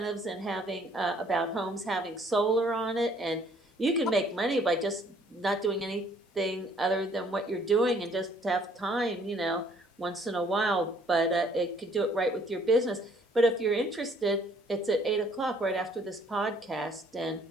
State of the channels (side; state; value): both; normal; correlation 0.61